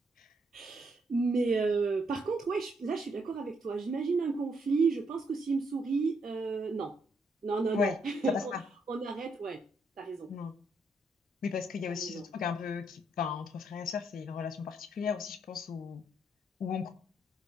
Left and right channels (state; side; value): normal; both; correlation 0.74